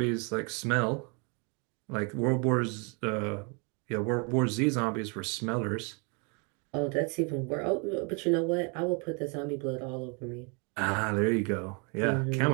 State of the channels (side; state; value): left; quieter; 34.5 dB